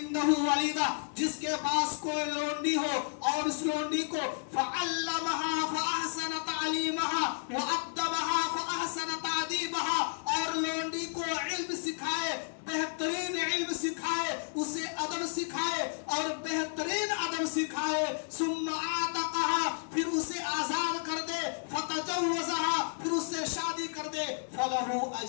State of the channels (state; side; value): silent; right; 56 dB below the other